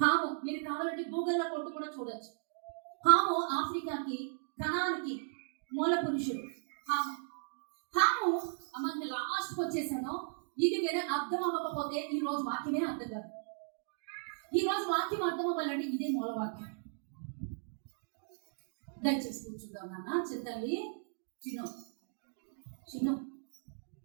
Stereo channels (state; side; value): silent; left; digital silence